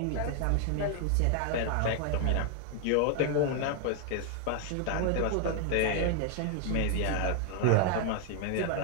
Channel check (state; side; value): different; both; correlation 0.00